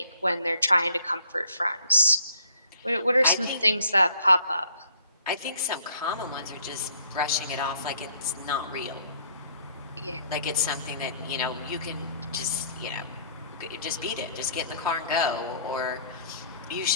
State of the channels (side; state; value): both; inverted; correlation -0.61